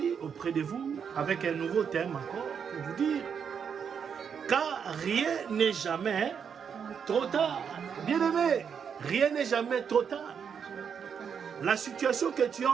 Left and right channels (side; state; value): left; quieter; 7.1 dB